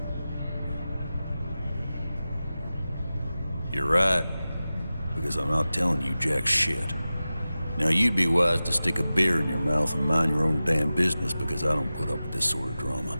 You're right, because I'm not telling you jack shit. Now you'd be wise to stick a beer in your mouth and mind your own damn business, because I don't put up with this sort of drama.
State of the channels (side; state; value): both; inverted; correlation -0.95